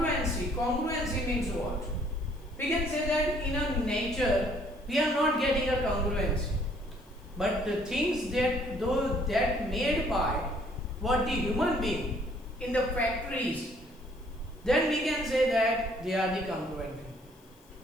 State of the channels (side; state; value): left; noise; hiss, 30 dB below the sound